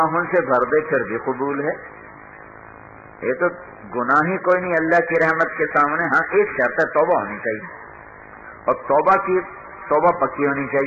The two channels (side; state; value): both; identical; correlation 1.00